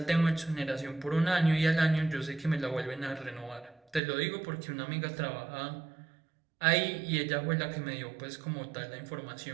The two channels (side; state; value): left; drops out; at 4.0 s